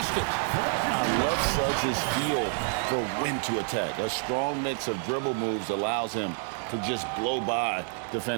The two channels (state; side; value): silent; left; 59 dB below the other